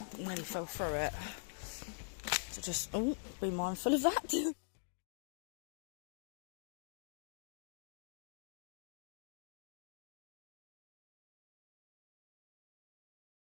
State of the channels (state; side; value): silent; right; digital silence